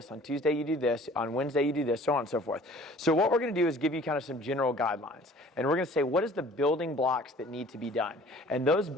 on Tuesday you do this, on Wednesday you do this, so on and so forth. So what we're going to do is give you kind of some general guidelines, and we're going to say what is the building blocks that need to be done. And those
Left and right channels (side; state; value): both; normal; correlation 0.50